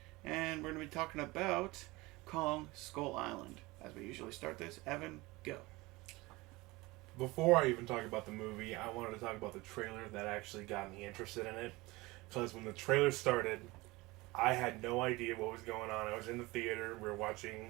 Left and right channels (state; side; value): quieter; left; 21.9 dB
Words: and we're going to be talking about Kong Skull Island. As we usually start this, Evan, go. Before I even talk about the movie, I wanted to talk about the trailer that actually got me interested in it. Because when the trailer started, I had no idea what was going on. I was in the theater, we were